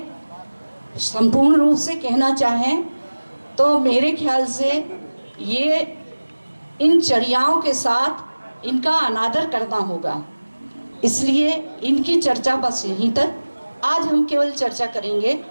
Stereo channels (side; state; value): both; inverted; correlation -1.00